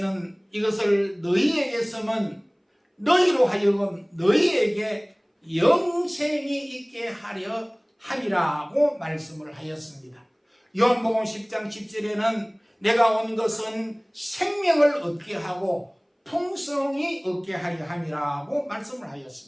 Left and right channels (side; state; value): both; identical; correlation 1.00